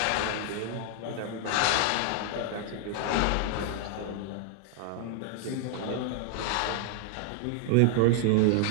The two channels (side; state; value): both; different; correlation 0.00